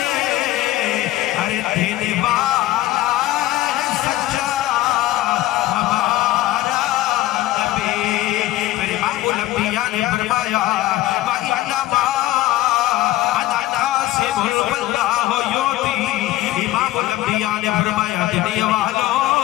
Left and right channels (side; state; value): right; quieter; 16.0 dB